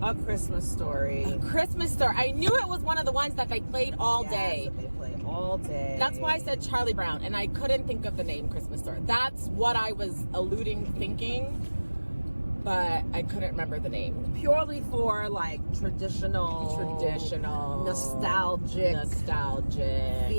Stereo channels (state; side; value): inverted; both; correlation -1.00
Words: A Christmas Story. A Christmas Story. I knew it was one of the ones that they played all day. They play all day. That's why I said Charlie Brown, and I couldn't think of the name Christmas Story. That's what I was thinking, but I couldn't remember the name. Purely for like traditional, nostalgic